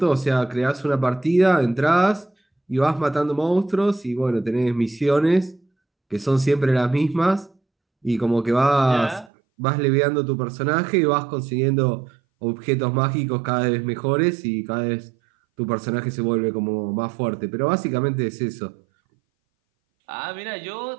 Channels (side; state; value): left; drops out; at 9.3 s